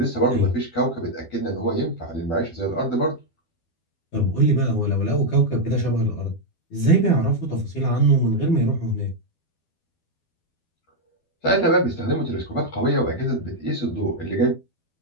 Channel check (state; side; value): late; right; 12 ms